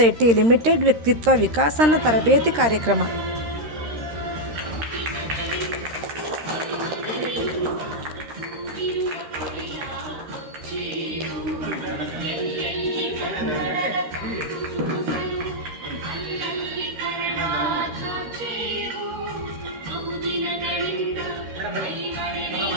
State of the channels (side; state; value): left; late; 13 ms